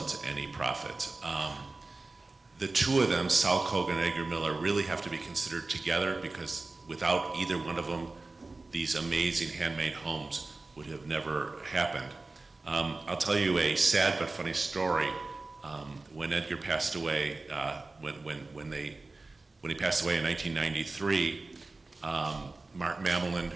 any profit. The two of them, Sal Kogan and Edgar Miller, really have to be considered together, because without either one of them, these amazing handmade homes would have never happened. I'll tell you a sad but funny story. When Edgar passed away, when he passed away in 1993, Mark Mamelin,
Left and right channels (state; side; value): quieter; left; 3.4 dB